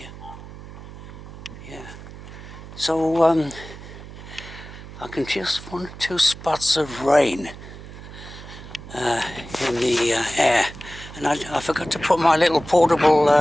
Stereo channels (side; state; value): right; noise; hum, 15 dB below the sound